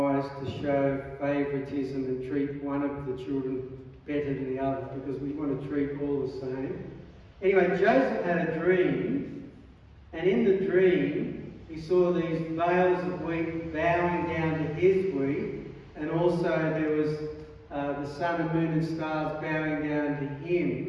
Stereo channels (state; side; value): identical; both; correlation 1.00